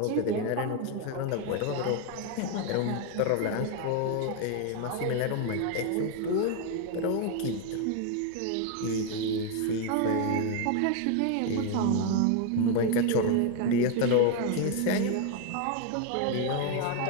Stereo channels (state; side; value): different; both; correlation 0.01